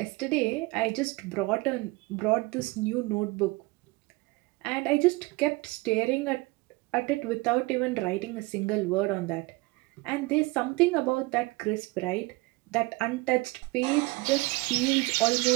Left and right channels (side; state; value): left; quieter; 24.0 dB